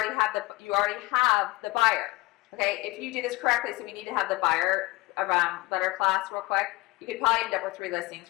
have the buyer. Okay. If you do this correctly, so we need to have the buyer around letter class real quick. You could probably end up with 3 listings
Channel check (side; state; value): right; quieter; 21.2 dB